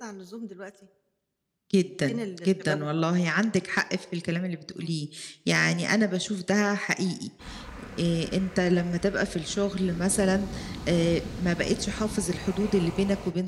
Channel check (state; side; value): identical; both; correlation 1.00